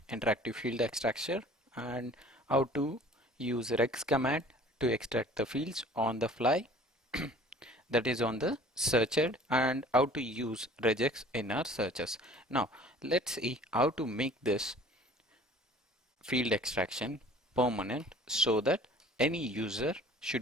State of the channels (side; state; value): both; normal; correlation 0.49